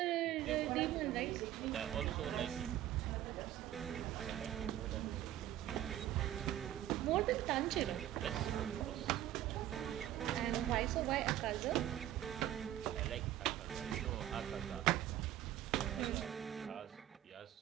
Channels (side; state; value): left; quieter; 12.8 dB